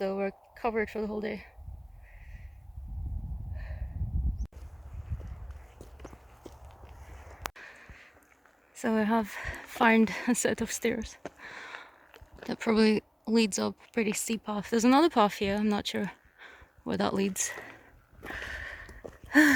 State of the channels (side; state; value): both; identical; correlation 1.00